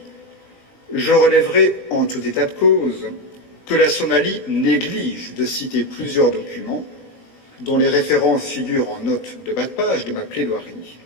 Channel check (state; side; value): late; right; 3.9 ms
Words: je relèverai en tout état de cause que la Somalie néglige de citer plusieurs documents dont les références figurent en note de bas de page de ma plaidoirie,